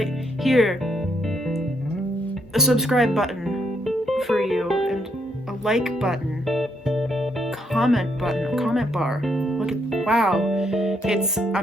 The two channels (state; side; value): normal; both; correlation 0.75